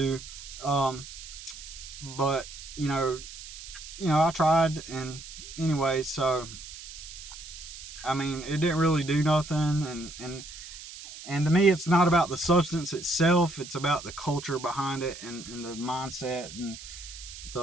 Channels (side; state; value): right; noise; hiss, 13 dB below the sound